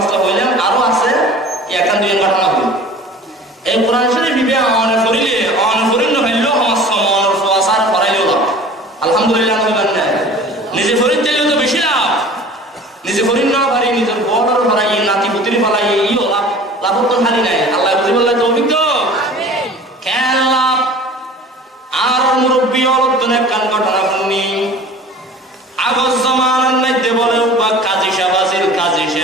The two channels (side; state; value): both; normal; correlation 0.43